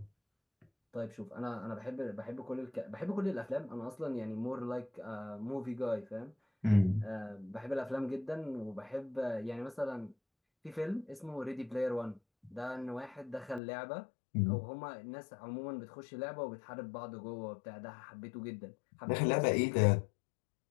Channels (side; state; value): right; drops out; at 13.6 s